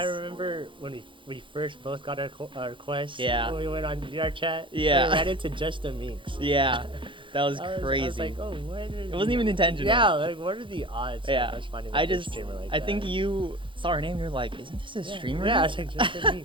remember when we first both got our Quest. Yeah. When we went on VR Chat. Yeah. We ran into just the minks. yeah, that was crazy. I was like, oh, what? It wasn't even intentional. Yeah, like what are the odds Yeah. of us finding I a good just- streamer like I that? think you saw her name. You're like, isn't this a streamer? Yeah, I was like, just the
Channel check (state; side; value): late; left; 0.24 ms